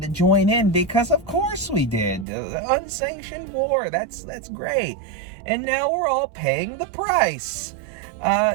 join in because of course we did. Unsanctioned war. That's great. And now we're all paying the price.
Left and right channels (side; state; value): left; drops out; at 2.2 s